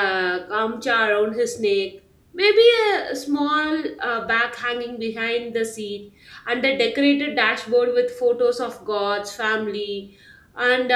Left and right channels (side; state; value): both; identical; correlation 1.00